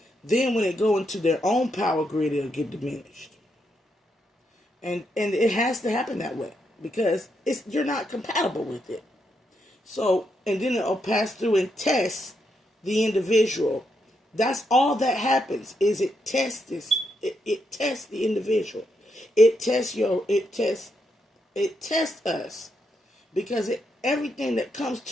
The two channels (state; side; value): normal; both; correlation 0.80